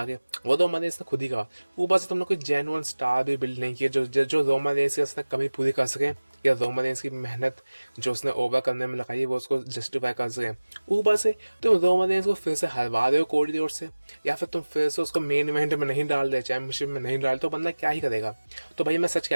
के, वो रोमन रेंस ने खुद ही कहा। ऊपर से तुमने कोई जेन्युइन स्टार भी बिल्ड नहीं किया जो रोमन रेंस की उसने कभी पूरी कर सके, या रोमन रेंस की मेहनत जो उसने ओवर करने में लगाई वो उसको जस्टिफाई कर सके। ऊपर से तुम रोमन रेंस को फिर से हरवा रहे हो कोडी रोड से, या फिर तुम फिर से उसको मेन इवेंट में नहीं डाल दे, चैंपियनशिप में नहीं डाल, तो बंदा क्या ही करेगा। तो भाई मैं सच कह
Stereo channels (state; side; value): inverted; both; correlation -1.00